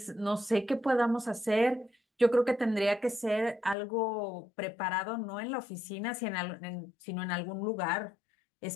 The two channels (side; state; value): right; drops out; at 3.8 s